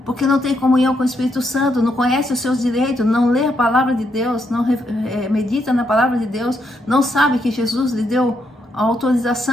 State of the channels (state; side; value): normal; both; correlation 0.78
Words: Porque não tem comunhão com o Espírito Santo, não conhece os seus direitos, não lê a palavra de Deus, não medita na palavra de Deus, não sabe que Jesus lhe deu a